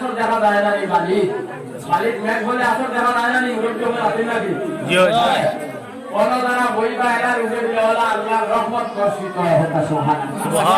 দেখা যায় না এই বালির মেঘ বললে আসর দেখা যায় না এই মুরব্বী বলে আসে নাকি জি কোন দ্বারা বইবা এলার উপরে দিলেওয়ালা আল্লাহর রহমত বর্ষিত হয়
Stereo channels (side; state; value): both; identical; correlation 1.00